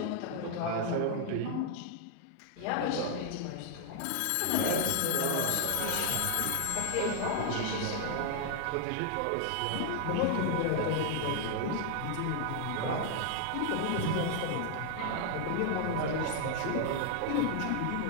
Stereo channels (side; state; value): both; different; correlation 0.00